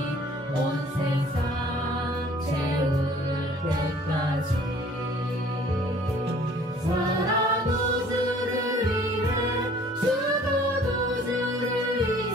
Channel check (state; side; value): normal; both; correlation 0.53